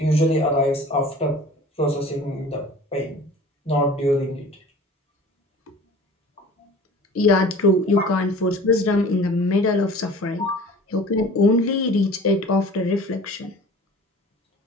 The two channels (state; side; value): normal; both; correlation 0.43